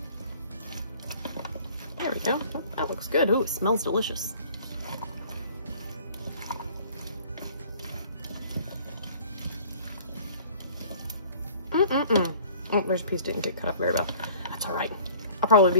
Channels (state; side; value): inverted; both; correlation -0.50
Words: There we go. Oh, that looks good. Ooh, it smells delicious. Oh, there's a piece didn't get cut up very well. That's all right. I'll probably